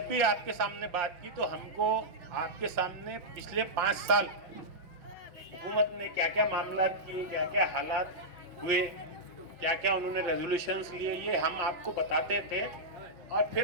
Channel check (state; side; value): late; left; 5.8 ms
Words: भी आपके सामने बात की तो हमको आपके सामने पिछले 5 साल हुकूमत ने क्या क्या मामला किए, क्या क्या हालात हुए, क्या क्या उन्होंने रेजोल्यूशंस लिए, ये हम आपको बताते थे और